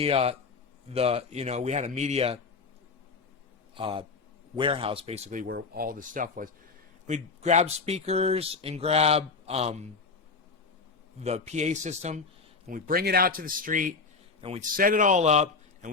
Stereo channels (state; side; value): quieter; right; 4.5 dB